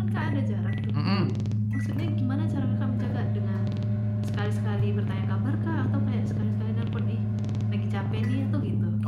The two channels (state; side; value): identical; both; correlation 1.00